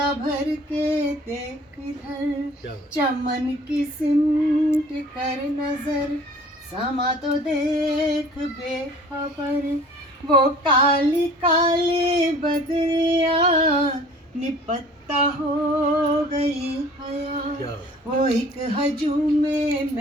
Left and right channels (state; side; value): normal; both; correlation 0.49